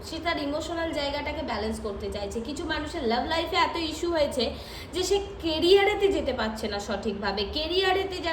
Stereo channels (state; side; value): identical; both; correlation 1.00